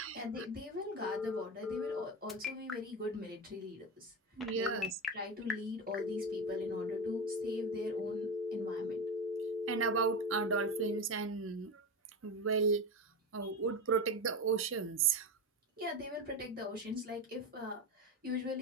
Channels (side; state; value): both; normal; correlation 0.20